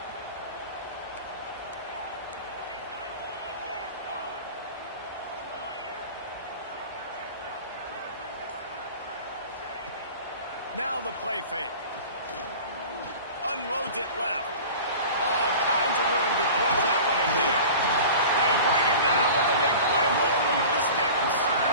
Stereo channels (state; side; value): inverted; both; correlation -0.38